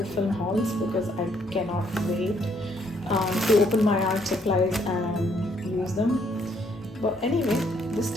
film hauls, because I cannot wait to open my art supplies and use them. But anyway, this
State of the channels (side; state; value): both; normal; correlation 0.69